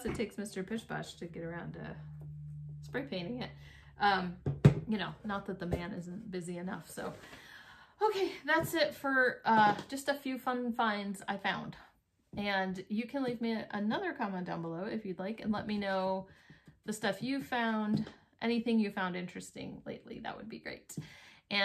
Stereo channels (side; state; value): both; identical; correlation 1.00